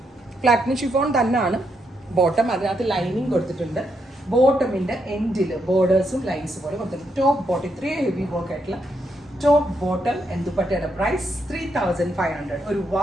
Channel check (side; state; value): both; normal; correlation 0.79